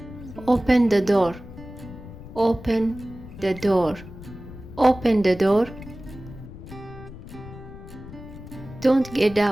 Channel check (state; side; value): noise; left; rumble, 15 dB below the sound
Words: Open the door. Open the door. Open the door. Don't get